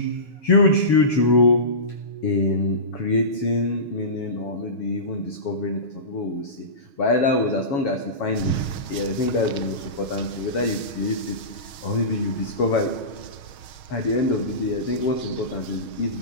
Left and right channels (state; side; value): late; right; 6.3 ms